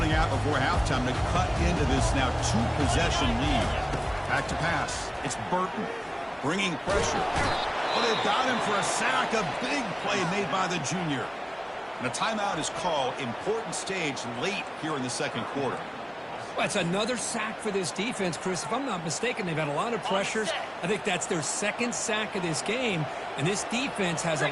out before halftime to cut into this now two-possession lead. Back to pass. It's Burton bringing pressure. Oh, they've got him for a sack. A big play made by the junior. And a timeout is called. Important stage late here in the second quarter. Well, it's another sack for this defense, Chris. If I'm not mistaken, they've had a lot of pressures. I think that's their second sack of this game. And this defense has a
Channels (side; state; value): both; identical; correlation 1.00